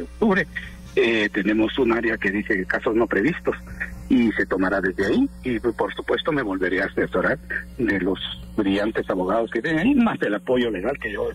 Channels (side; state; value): both; identical; correlation 1.00